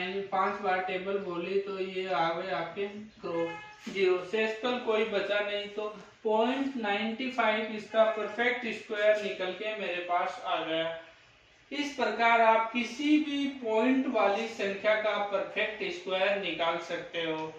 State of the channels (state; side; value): identical; both; correlation 1.00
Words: 5 बार टेबल बोली तो ये आ गए आपके 0 से कोई बचा नहीं, तो 0.95 इसका परफेक्ट स्क्वायर निकल के मेरे पास आ गया। इस प्रकार आप किसी भी पॉइंट वाली संख्या का परफेक्ट स्क्वायर निकाल सकते हो।